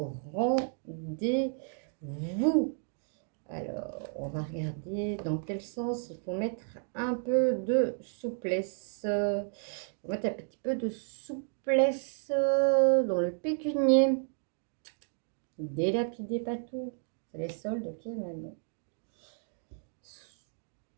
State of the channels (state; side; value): silent; left; 56 dB below the other